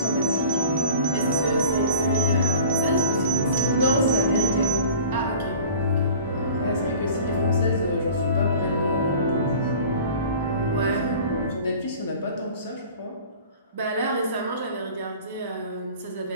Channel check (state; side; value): inverted; both; correlation -0.42